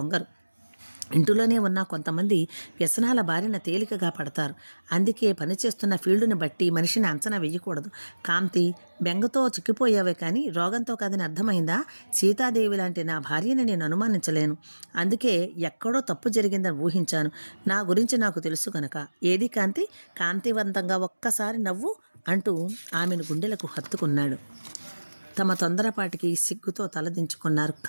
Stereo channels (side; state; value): both; inverted; correlation -1.00